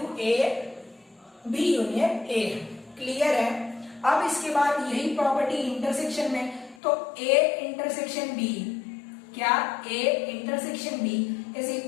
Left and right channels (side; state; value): right; drops out; at 6.8 s